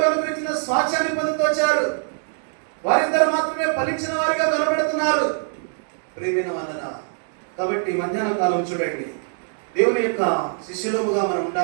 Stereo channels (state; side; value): silent; left; 64 dB below the other